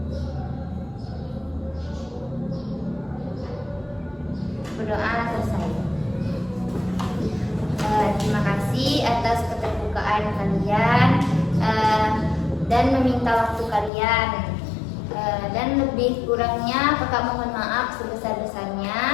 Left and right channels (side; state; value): right; drops out; at 13.9 s